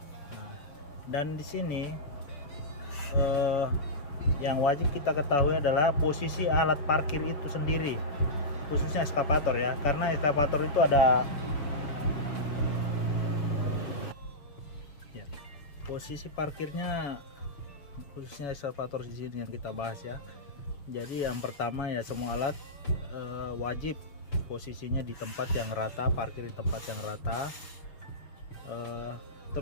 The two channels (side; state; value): right; late; 6.8 ms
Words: Nah, dan di sini yang wajib kita ketahui adalah posisi alat parkir itu sendiri, khususnya ekskavator ya, karena ekskavator itu ada ya, posisi parkirnya, khususnya ekskavator di sini yang kita bahas ya. Jadi yang pertama ya, semua alat wajib posisinya di tempat yang rata, parkir di tempat yang rata.